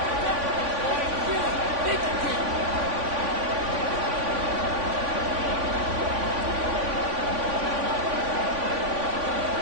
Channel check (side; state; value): left; late; 3.5 ms